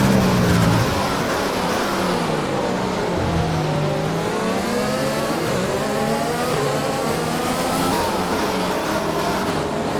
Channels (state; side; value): identical; both; correlation 1.00